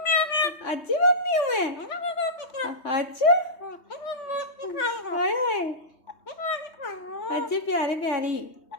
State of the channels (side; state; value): right; late; 3.2 ms